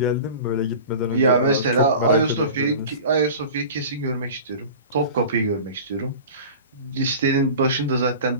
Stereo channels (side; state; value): both; inverted; correlation -0.37